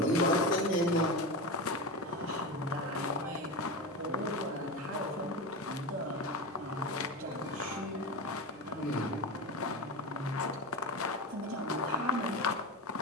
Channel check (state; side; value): normal; both; correlation 0.22